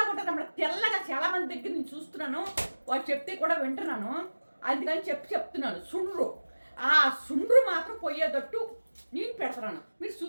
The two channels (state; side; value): inverted; both; correlation -1.00